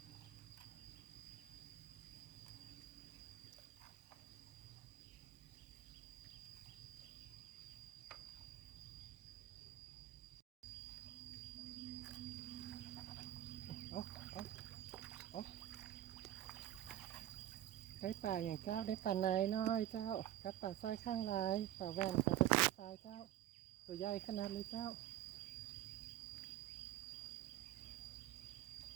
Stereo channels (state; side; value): quieter; left; 13.0 dB